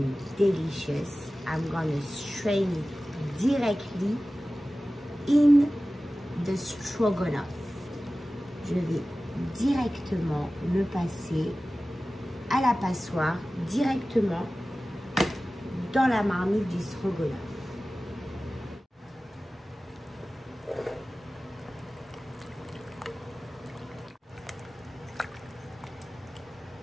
delicious. I'm gonna strain it directly in the stroganoff. Je vais directement le passer à la passoire, directement dans la marmite du stroganoff.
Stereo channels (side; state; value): both; normal; correlation 0.96